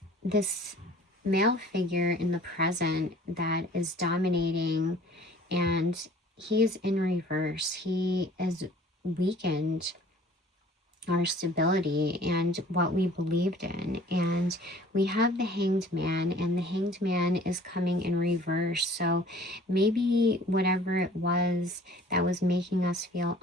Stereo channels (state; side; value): normal; both; correlation 0.50